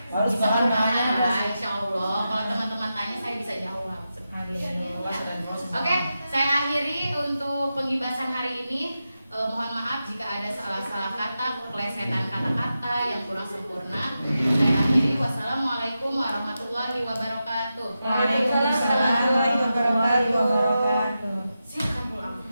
Harus bisa paham bertanya tanya. lah, insya Allah. Kalau teman-teman tanya saya bisa jawab. Oke, saya akhiri untuk penggibasan hari ini. Mohon maaf jika ada salah-salah kata, kelesetan kata-kata yang kurang sempurna. Saya akhiri. Wassalamualaikum warahmatullahi wabarakatuh. Waalaikumsalam warahmatullahi wabarakatuh. Silakan pulang.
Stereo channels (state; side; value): inverted; both; correlation -0.90